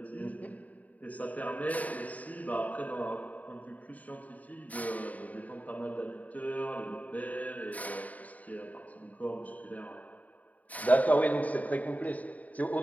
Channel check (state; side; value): late; right; 0.073 ms